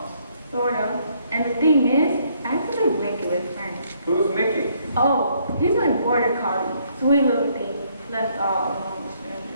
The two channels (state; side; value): inverted; both; correlation -0.69